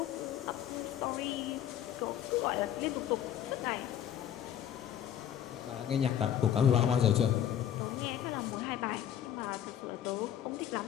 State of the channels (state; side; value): quieter; right; 10.2 dB